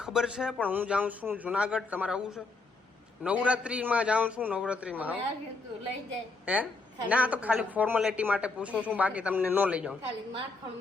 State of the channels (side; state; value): right; quieter; 3.6 dB